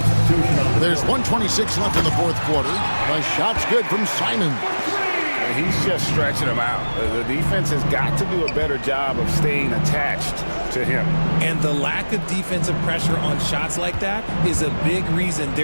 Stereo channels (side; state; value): both; inverted; correlation -1.00